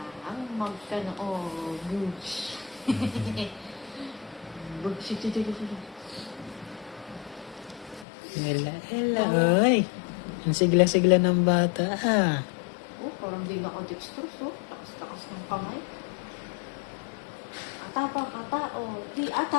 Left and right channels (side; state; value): right; drops out; at 8.1 s